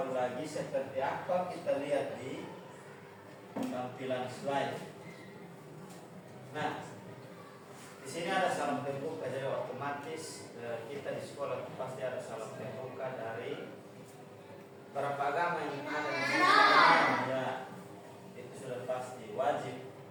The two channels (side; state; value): both; identical; correlation 1.00